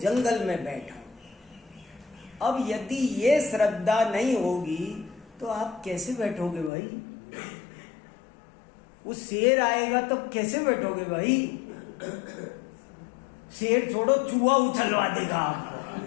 में बैठा, अब यदि ये श्रद्धा नहीं होगी तो आप कैसे बैठोगे भाई? वो शेर आएगा तब कैसे बैठोगे भाई? शेर छोड़ो, चूहा उछलवा देगा आपको।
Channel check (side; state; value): right; drops out; at 6.7 s